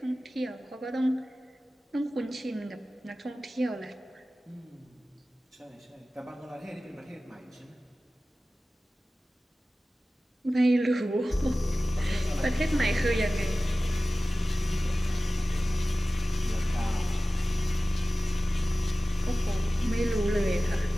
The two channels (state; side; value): normal; both; correlation 0.96